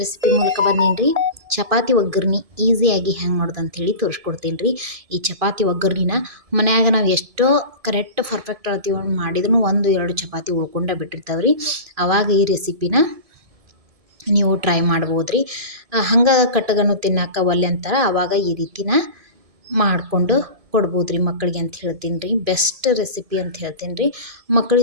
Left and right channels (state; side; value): late; left; 1.7 ms